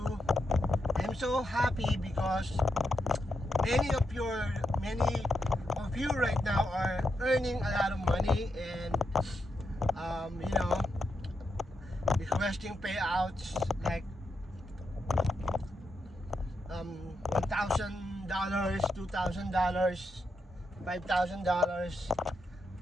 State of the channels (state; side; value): normal; both; correlation 0.83